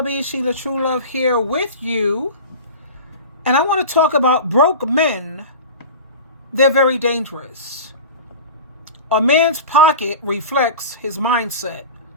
SheilaTruelove here with you. And I want to talk about broke men. They're very dangerous. A man's pocket reflects his mindset.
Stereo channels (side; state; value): both; inverted; correlation -0.33